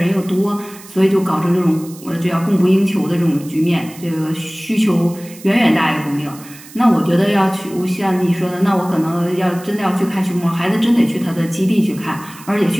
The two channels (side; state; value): right; noise; hiss, 19 dB below the sound